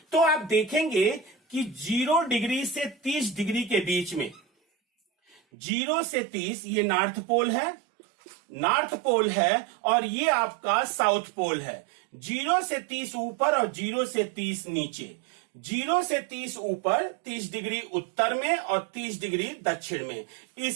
तो आप देखेंगे कि 0 डिग्री से 30 डिग्री के बीच में, 0 से 30 ये नॉर्थ पोल है और ये आपका साउथ पोल है। 0 से 30 ऊपर और 0 से 30 नीचे। 0 से 30 ऊपर 30 डिग्री उत्तर में और 30 डिग्री दक्षिण में।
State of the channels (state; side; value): drops out; left; at 5.4 s